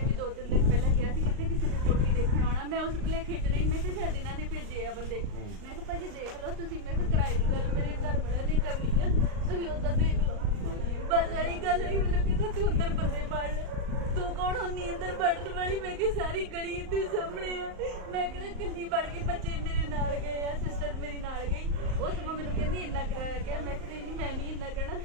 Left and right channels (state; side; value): late; left; 38 ms